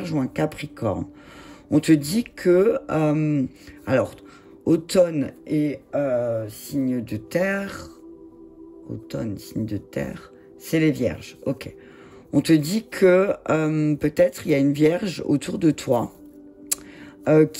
ou un capricorne. On te dit que, automne et signe de terre, c'est les vierges, ok. On te dit que peut-être il y a une vierge autour de toi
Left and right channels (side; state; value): both; identical; correlation 1.00